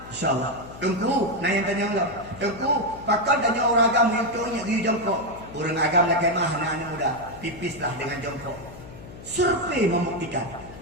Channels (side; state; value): left; noise; hum, 16 dB below the sound